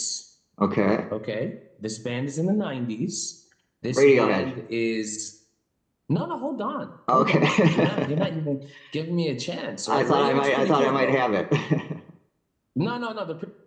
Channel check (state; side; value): identical; both; correlation 1.00